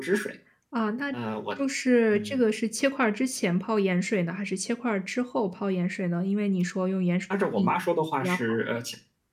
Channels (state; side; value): identical; both; correlation 1.00